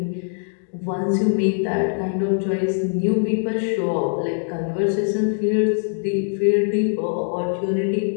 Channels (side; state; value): right; silent; digital silence